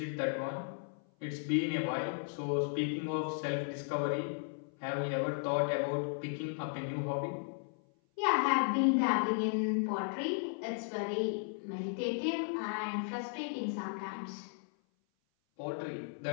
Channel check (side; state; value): right; silent; 54 dB below the other